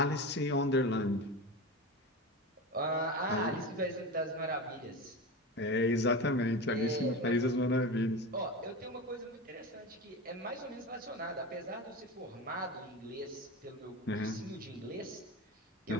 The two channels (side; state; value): both; normal; correlation 0.25